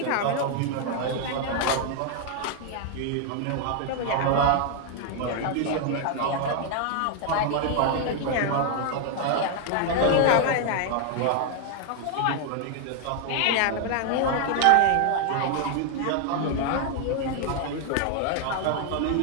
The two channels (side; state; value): both; different; correlation 0.00